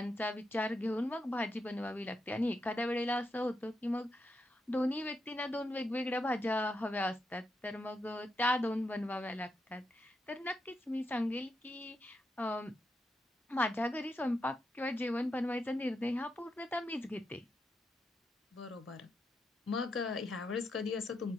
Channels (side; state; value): both; normal; correlation 0.84